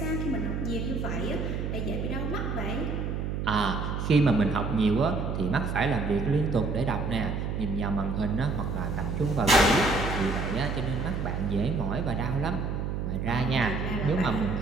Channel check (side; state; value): right; noise; hum, 2 dB below the sound